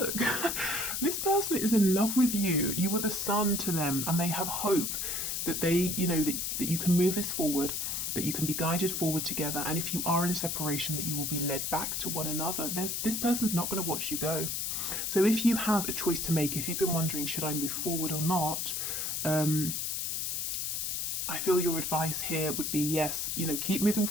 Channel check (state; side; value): noise; left; hiss, 1 dB below the sound